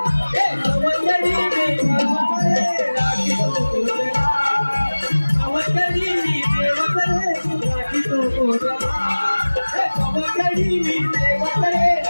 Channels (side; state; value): both; inverted; correlation -1.00